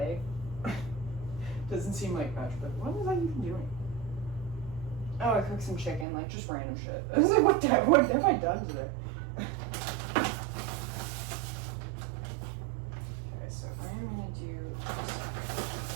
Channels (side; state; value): left; drops out; at 6.1 s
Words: Doesn't seem like much, but what was I even doing? Oh, I cooked some chicken, like just random shit. I was like, what have I done today? So I'm gonna do